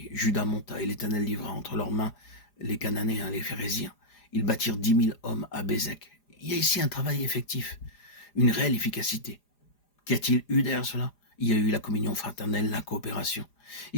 Judas monta, et l'Éternel livra entre leurs mains les Cananéens, les Phéréziens. Ils bâtirent 10 000 hommes à Bézek. Il y a ici un travail effectif, une réelle efficacité. Qu'y a-t-il eu derrière cela? Il y a eu la communion fraternelle, la coopération.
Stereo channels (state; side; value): late; right; 4.9 ms